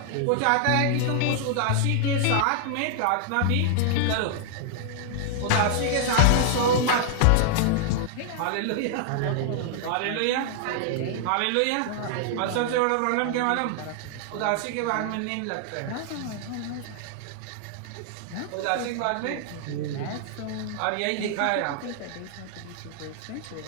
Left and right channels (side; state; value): both; different; correlation 0.00